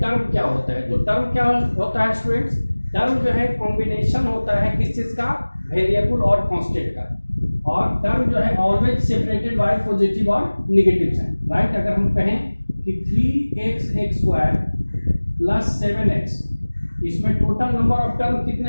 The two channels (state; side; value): inverted; both; correlation -1.00